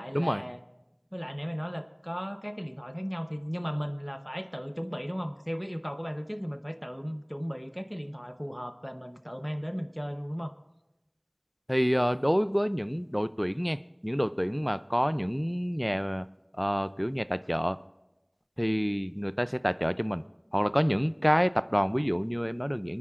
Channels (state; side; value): identical; both; correlation 1.00